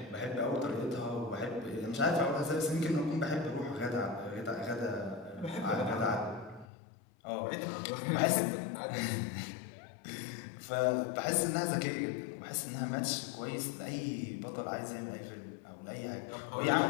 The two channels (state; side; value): drops out; right; at 6.7 s